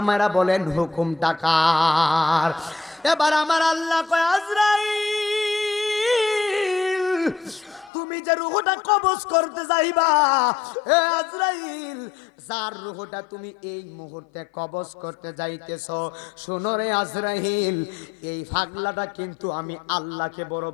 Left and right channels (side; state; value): right; drops out; at 7.9 s